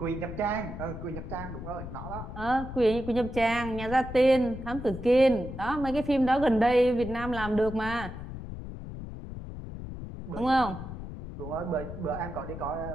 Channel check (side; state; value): left; noise; rumble, 9 dB below the sound